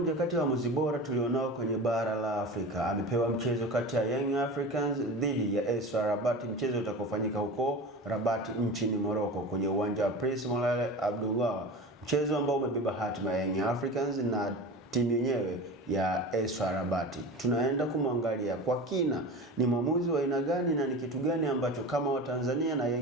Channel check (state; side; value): normal; both; correlation 0.31